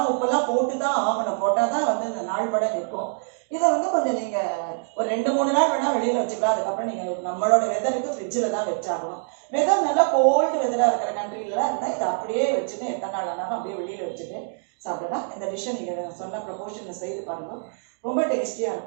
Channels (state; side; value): silent; left; digital silence